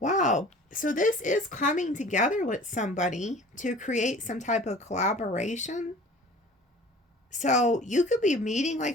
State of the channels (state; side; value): normal; both; correlation 0.45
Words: So this is coming together with somebody to create some type of collaboration. So you could be meeting like